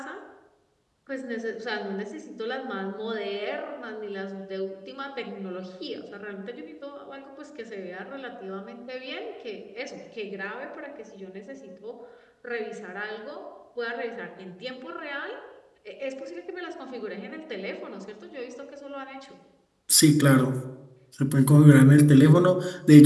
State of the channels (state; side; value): identical; both; correlation 1.00